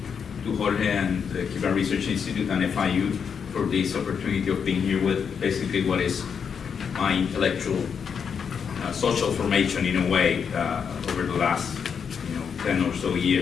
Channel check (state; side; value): quieter; right; 6.8 dB